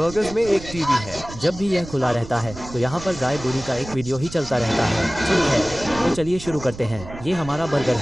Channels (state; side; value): noise; right; rumble, 14 dB below the sound